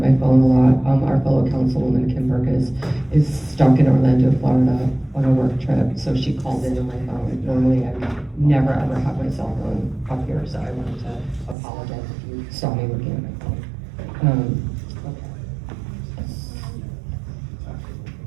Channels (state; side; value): drops out; left; at 11.6 s